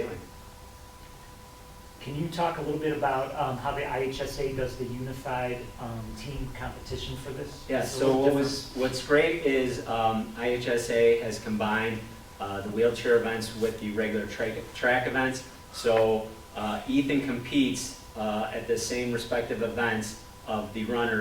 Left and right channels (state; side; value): identical; both; correlation 1.00